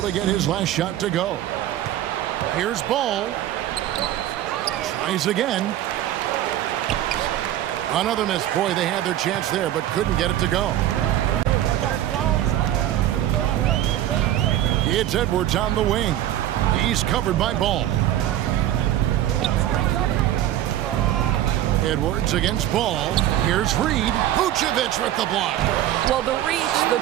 to get his last shot to go. Here's Ball. Tries again. Another miss. Boy, they had their chance there, but couldn't get it to go. It's Edwards on the wing. He's covered by Ball. Edwards against Ball. Here's Reed. Vucevic with the block. Well, the reach, the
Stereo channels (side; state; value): left; quieter; 12.7 dB